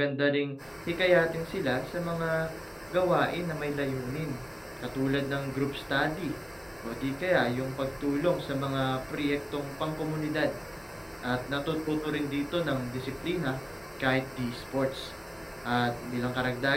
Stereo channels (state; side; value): identical; both; correlation 1.00